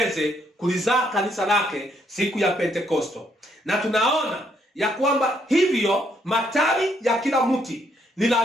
kulizaa kanisa lake siku ya Pentekosto. Na tunaona ya kwamba hivyo matawi ya kila mti ni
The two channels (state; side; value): normal; both; correlation 0.72